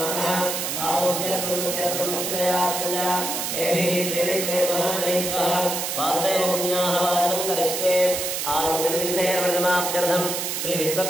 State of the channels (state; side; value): noise; right; hiss, 2 dB below the sound